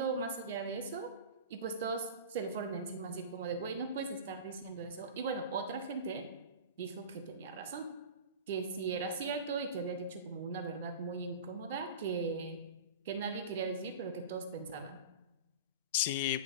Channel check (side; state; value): both; inverted; correlation -0.31